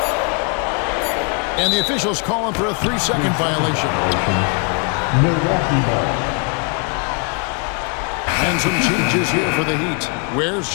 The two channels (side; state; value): right; quieter; 37.3 dB